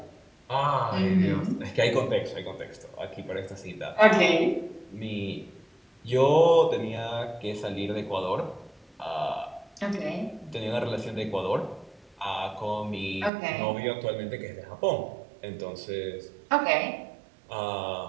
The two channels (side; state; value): left; drops out; at 13.3 s